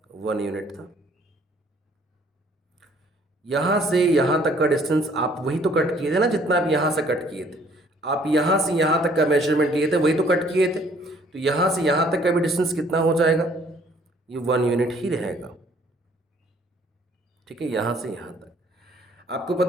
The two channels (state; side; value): normal; both; correlation 0.60